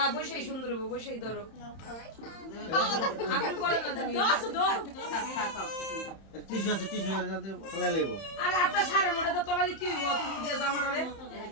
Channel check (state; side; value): late; right; 31 ms